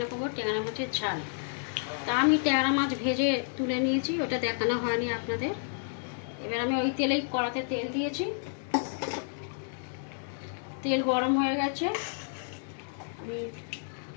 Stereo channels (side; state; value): right; silent; digital silence